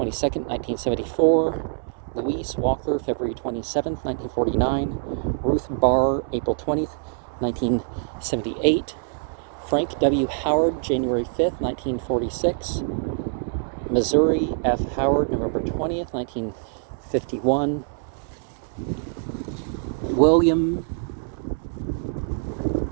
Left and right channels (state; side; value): silent; left; 61 dB below the other